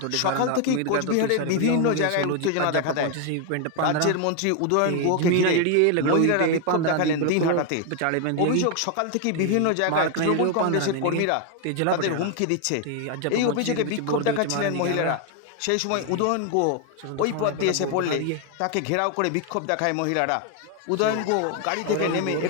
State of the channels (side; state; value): both; different; correlation 0.01